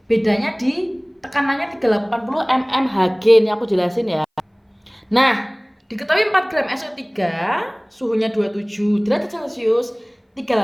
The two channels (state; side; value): identical; both; correlation 1.00